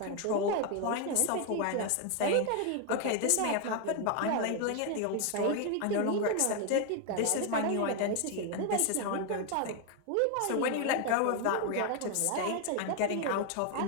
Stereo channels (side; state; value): both; different; correlation 0.01